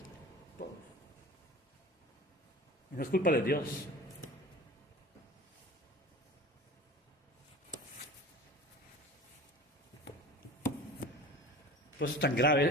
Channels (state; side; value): normal; both; correlation 0.39